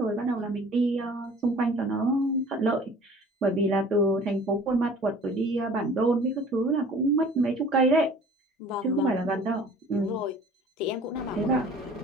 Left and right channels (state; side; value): normal; both; correlation 0.48